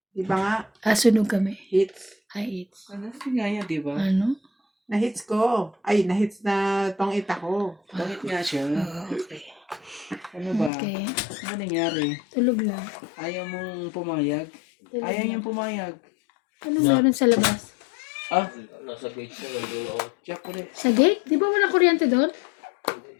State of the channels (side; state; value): right; drops out; at 10.7 s